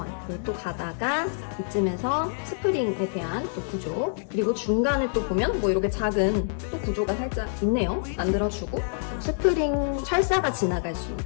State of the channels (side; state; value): right; silent; digital silence